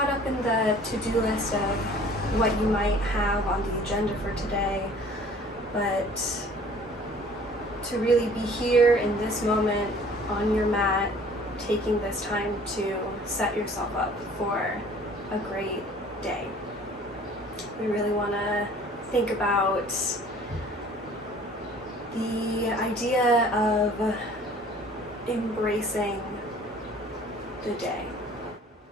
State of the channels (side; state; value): both; normal; correlation 0.51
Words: up in the to-do list of what you might have on the agenda for today, but to really be here in this moment on your mat, taking this time to set yourself up for a great day. We really want to think about the idea of embracing the day.